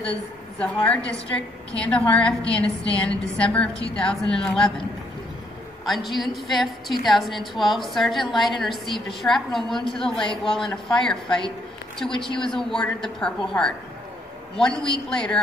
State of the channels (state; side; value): normal; both; correlation 0.71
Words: the Zahar District, Kandahar, Afghanistan in December of 2011. On June 5, 2012, Sergeant Lyden received a shrapnel wound to the leg while in a firefight, to which he was awarded the Purple Heart. 1 week later,